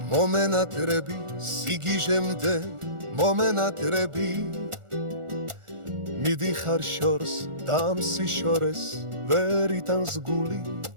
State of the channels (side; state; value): left; late; 1.4 ms